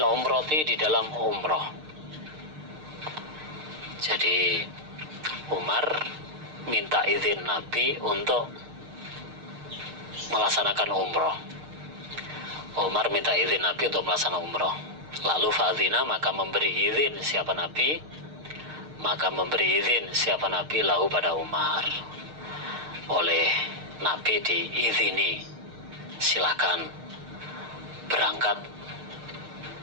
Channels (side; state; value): left; late; 6.5 ms